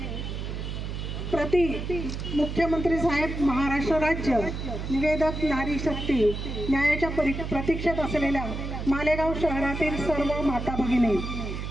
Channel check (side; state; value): right; noise; hum, 5 dB below the sound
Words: प्रति मुख्यमंत्री साहेब महाराष्ट्र राज्य, निवेदक नारी शक्ती, न्यायाच्या प्रतीक्षेत असलेल्या मालेगाव शहरातील सर्व माता भगिनी।